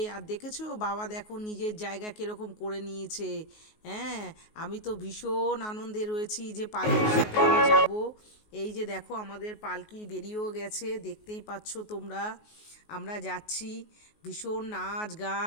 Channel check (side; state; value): right; late; 19 ms